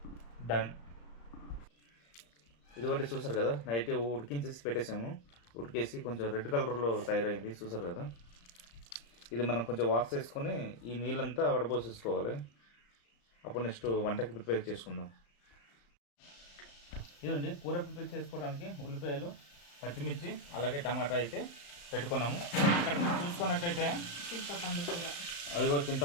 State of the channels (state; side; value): late; right; 35 ms